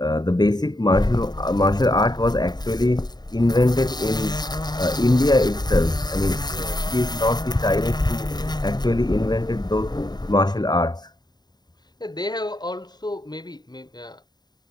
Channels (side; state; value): right; late; 0.20 ms